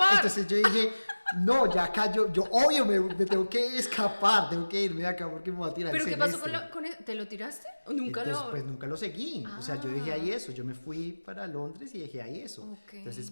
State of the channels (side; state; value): both; inverted; correlation -1.00